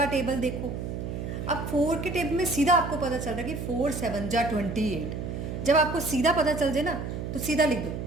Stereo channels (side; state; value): right; noise; hum, 5 dB below the sound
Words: टेबल देखो। अब 4 के टेबल में सीधा आपको पता चल रहा है कि 4 7 जा 28। जब आपको सीधा पता चल जाए ना तो सीधा लिख दो